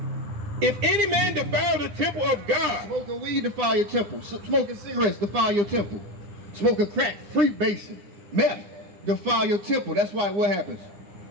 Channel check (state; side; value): late; left; 9.8 ms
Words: If any man defile the temple of God... Smoking weed defile your temple. Smoking cigarettes defile your temple. Smoking crack, freebasing, meth defile your temple. That's why what happens?